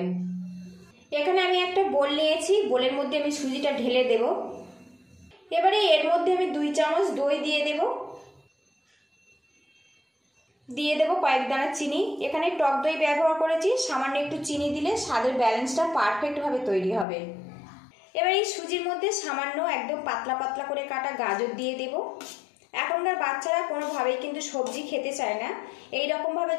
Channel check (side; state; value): right; drops out; at 17.1 s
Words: এখানে আমি একটা বোল নিয়েছি, বোলের মধ্যে আমি সুজিটা ঢেলে দেব। এবারে এর মধ্যে আমি 2 চামচ দই দিয়ে দেব কয়েক দানা চিনি। এখানে টক দই ব্যবহার করেছি, সামান্য একটু চিনি দিলে স্বাদের ব্যালেন্সটা পারফেক্টভাবে তৈরি হবে। এবার এই সুজির মধ্যে সামান্য একদম পাতলা পাতলা করে কাটা গাজর দিয়ে দেব। এখনকার বাচ্চারা কোনোভাবেই কিন্তু সবজি খেতে চায় না। এই রকমভাবে